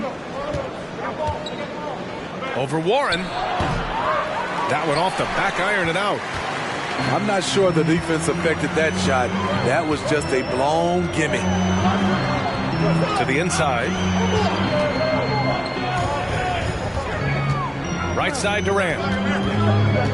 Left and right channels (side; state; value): both; identical; correlation 1.00